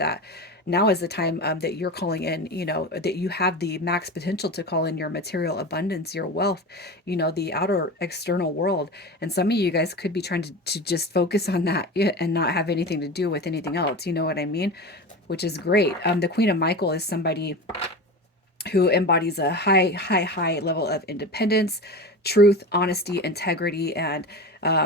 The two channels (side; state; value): both; normal; correlation 0.28